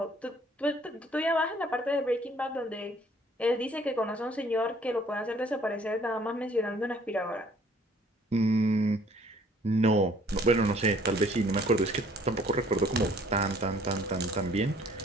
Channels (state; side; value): normal; both; correlation 0.59